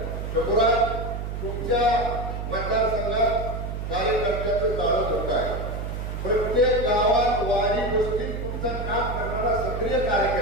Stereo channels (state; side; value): noise; right; hum, 5 dB below the sound